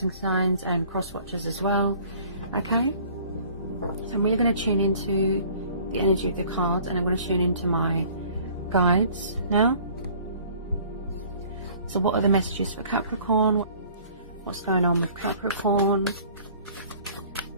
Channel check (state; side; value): inverted; both; correlation -0.52